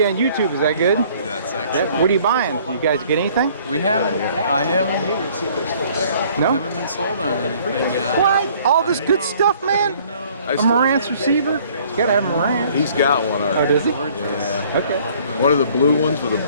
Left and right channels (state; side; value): inverted; both; correlation -0.57